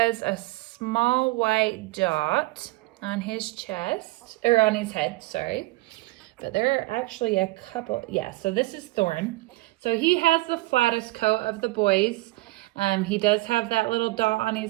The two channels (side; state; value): left; quieter; 20.6 dB